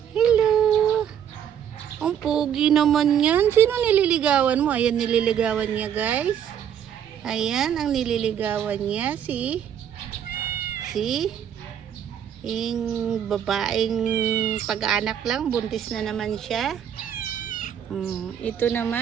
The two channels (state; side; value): quieter; left; 9.1 dB